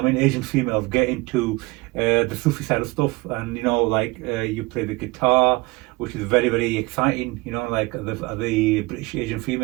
Asian females get into the Sufi side of stuff, and you play the guitar, which is very very exciting. Like the British Asian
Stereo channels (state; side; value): quieter; left; 23.5 dB